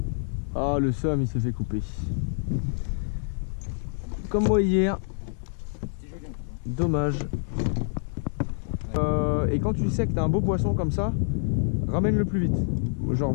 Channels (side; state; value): right; silent; digital silence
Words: Ah, le somme, il s'est fait couper. Comme moi hier. C'était joli un peu. Dommage. Et quand tu sais que t'as un beau poisson comme ça, ramène-le plus vite. Genre,